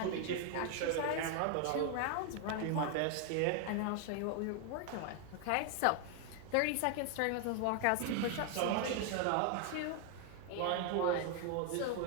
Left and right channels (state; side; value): different; both; correlation 0.00